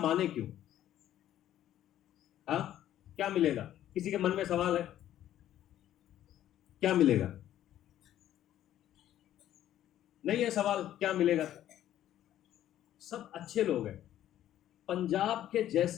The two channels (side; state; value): right; quieter; 12.1 dB